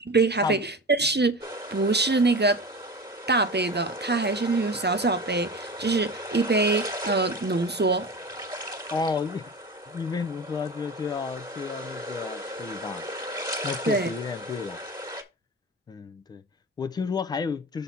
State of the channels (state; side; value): normal; both; correlation 0.31